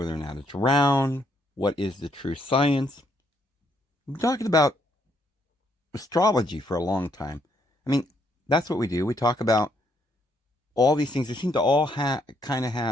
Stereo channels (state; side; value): normal; both; correlation 0.72